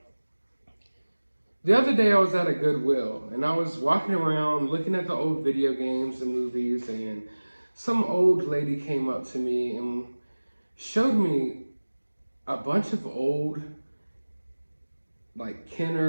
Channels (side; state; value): both; inverted; correlation -1.00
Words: the other day I was at a Goodwill, and I was walking around looking at the old video games and movies, and some old lady came up to me and showed me a bunch of old, like,